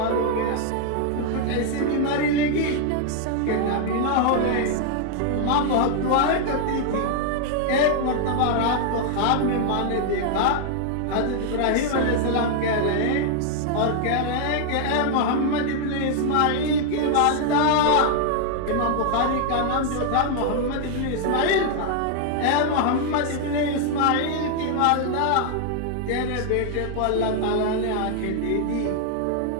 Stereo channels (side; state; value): both; different; correlation 0.00